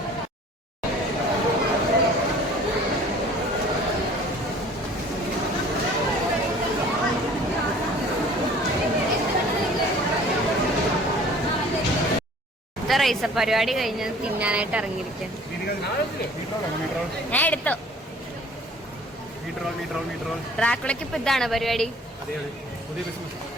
റൈസ പരിപാടി കഴിഞ്ഞ് തിന്നാനായിട്ട് ഇറങ്ങിയിരിക്കാൻ ഞാൻ എടുത്തു. ഡ്രാക്കുളയ്ക്ക് ഇപ്പൊ ഇതാണ് പരിപാടി.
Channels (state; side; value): normal; both; correlation 0.50